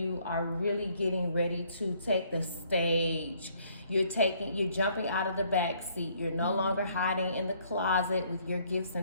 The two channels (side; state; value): both; inverted; correlation -0.64